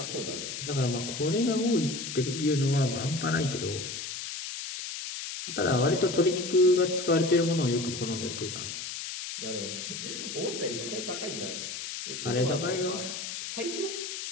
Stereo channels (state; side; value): noise; left; hiss, 6 dB below the sound